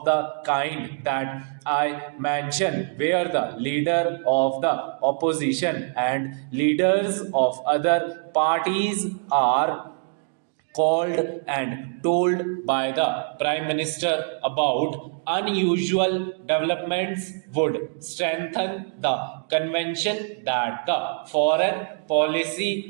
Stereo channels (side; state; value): left; silent; 62 dB below the other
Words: the kind that I mentioned, where the leader of the opposition and leaders of other parties are called and told by the Prime Minister about unusual developments, would strengthen the convention that the foreign